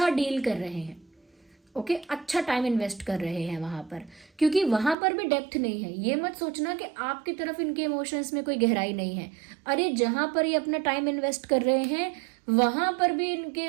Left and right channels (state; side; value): drops out; left; at 5.0 s